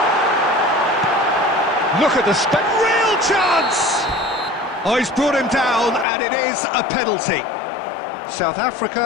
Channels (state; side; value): drops out; right; at 6.1 s